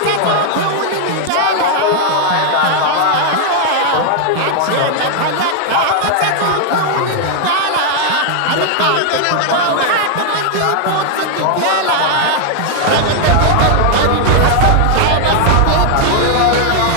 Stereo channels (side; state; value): both; different; correlation 0.00